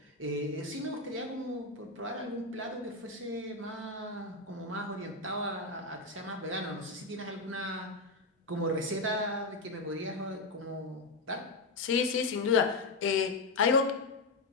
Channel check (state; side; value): quieter; right; 3.2 dB